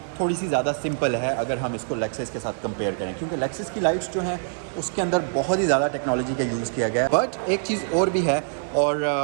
थोड़ी सी ज़्यादा सिंपल है अगर हम इसको लेक्सस के साथ कंपेयर करें, क्योंकि लेक्सस की लाइट्स जो हैं उसके अंदर बहुत ही ज़्यादा टेक्नोलॉजी का यूज़ किया गया है। बट एक चीज़ और भी है और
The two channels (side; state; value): left; silent; 56 dB below the other